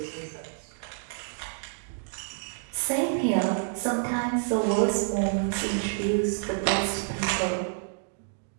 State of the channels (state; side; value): silent; left; digital silence